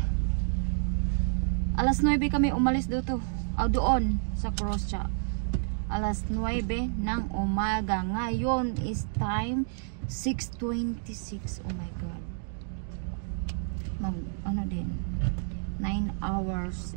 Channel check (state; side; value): silent; left; digital silence